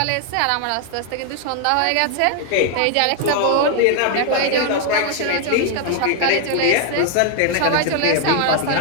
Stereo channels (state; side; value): different; both; correlation 0.00